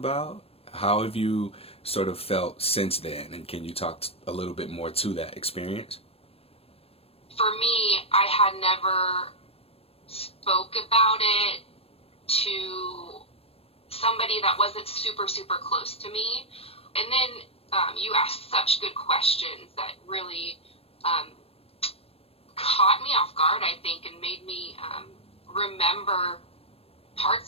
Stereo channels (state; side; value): late; right; 0.28 ms